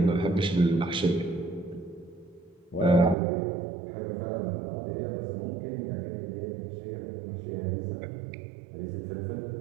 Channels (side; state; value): left; drops out; at 3.2 s